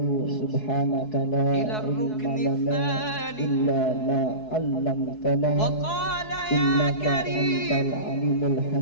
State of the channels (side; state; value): right; late; 4.7 ms